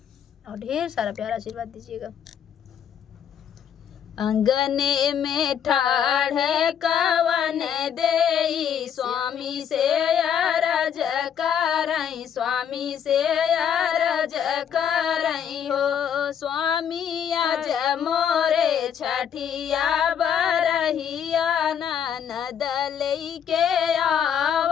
और ढेर सारा प्यारा आशीर्वाद दीजिएगा। अंगने में ठाढ़ कवन देई स्वामी से अरज करई, स्वामी से अरज करई हो। स्वामी आज मोरे छठिया बरहिया ननद लइके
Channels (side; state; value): right; quieter; 8.5 dB